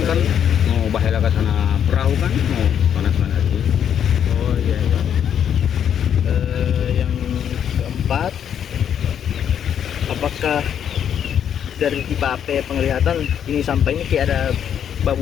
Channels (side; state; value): right; quieter; 8.9 dB